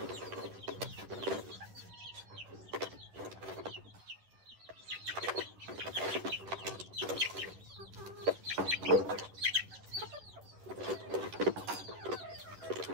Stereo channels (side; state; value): left; late; 10 ms